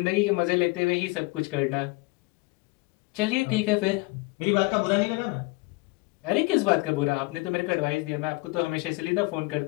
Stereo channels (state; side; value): quieter; right; 24.7 dB